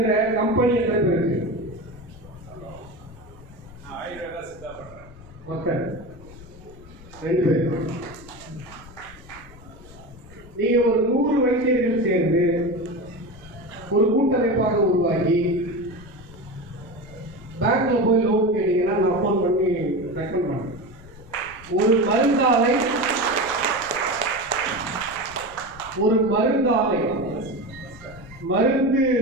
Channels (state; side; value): noise; left; rumble, 20 dB below the sound